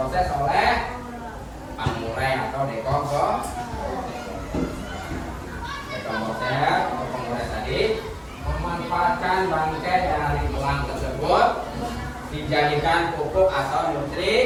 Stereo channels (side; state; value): both; identical; correlation 1.00